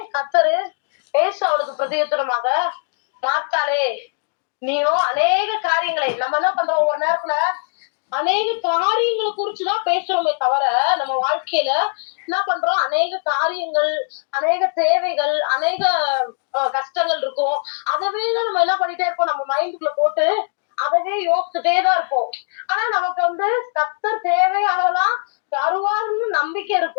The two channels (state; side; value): silent; right; 63 dB below the other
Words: கர்த்தரு அவளுக்கு பிரதியுத்தரமாக, மார்த்தாளே, நீயும் அநேக காரியங்களை, நம்ம என்ன பண்றோம், ஒரு நேரத்துல அநேக காரியங்களை குறிச்சுதான் பேசுறோமே தவிர, நம்ம வாழ்க்கையில என்ன பண்றோம், அநேக காரியங்கள், அநேக தேவைகள், அநேக கஷ்டங்கள் இருக்கும். அதவே தான் நம்ம என்ன பண்ணிட்டே இருப்போம், நம்ம மைண்டுக்குள்ள போட்டு அதவே யோசிச்சுட்டே தான் இருப்போம். ஆனா நமக்கு கர்த்தர் தேவையானதெல்லாம் தருவாருன்னு நம்பிக்கை